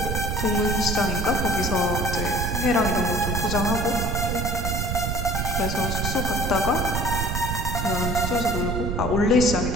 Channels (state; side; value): noise; right; rumble, 1 dB below the sound